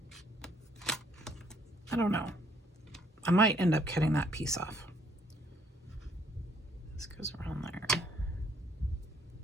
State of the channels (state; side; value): normal; both; correlation 0.66